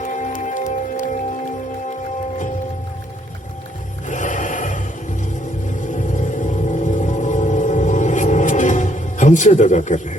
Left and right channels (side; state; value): both; normal; correlation 0.69